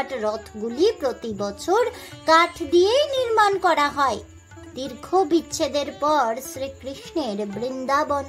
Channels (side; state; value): both; identical; correlation 1.00